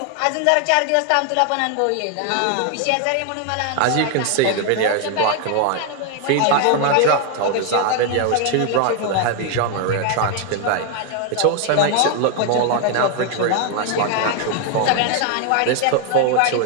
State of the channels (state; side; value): different; both; correlation 0.00